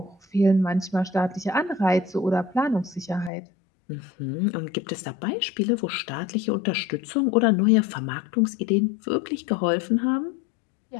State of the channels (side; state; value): right; drops out; at 3.3 s